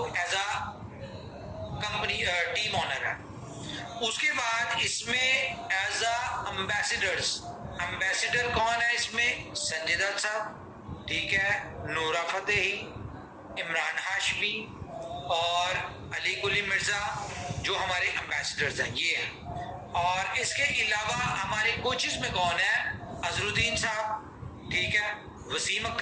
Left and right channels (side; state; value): both; identical; correlation 1.00